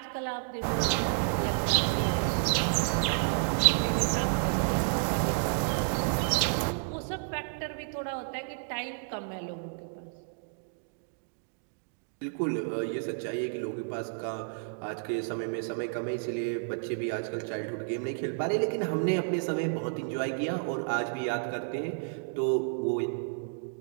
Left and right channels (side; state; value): left; silent; digital silence